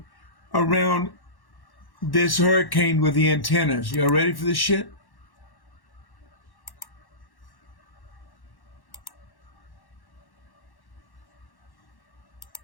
around this hurricane with the antennas. Y'all ready for this shit?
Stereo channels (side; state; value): right; late; 1.1 ms